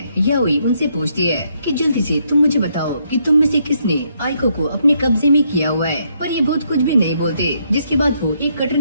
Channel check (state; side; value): inverted; both; correlation -0.74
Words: याओई उनसे पूछती है कि जल्दी से तुम मुझे बताओ कि तुम में से किसने आइको को अपने कब्जे में किया हुआ है। पर ये भूत कुछ भी नहीं बोलते। जिसके बाद वो एक कटर